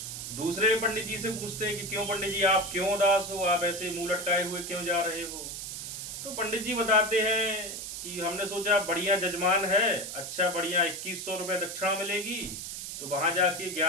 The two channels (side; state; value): right; noise; hiss, 7 dB below the sound